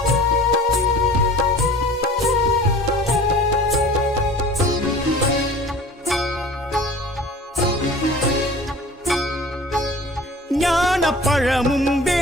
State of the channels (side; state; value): both; normal; correlation 0.43